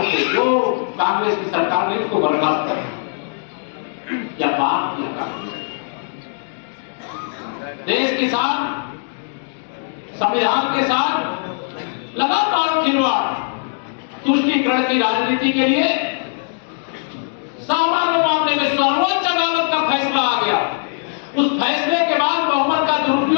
से जो कांग्रेस की सरकार ने उसको बर्खास्त कर या बात किया। कांग्रेस देश के साथ, संविधान के साथ लगातार खिलवाड़, तुष्टीकरण की राजनीति के लिए सामान्य मामले में सर्वोच्च अदालत का फैसला आ गया। उस फैसले के बाद बहुमत का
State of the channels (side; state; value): right; silent; digital silence